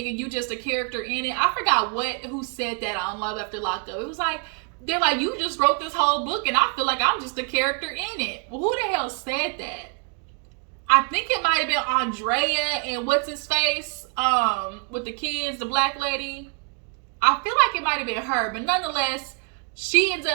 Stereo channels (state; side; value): quieter; left; 39.3 dB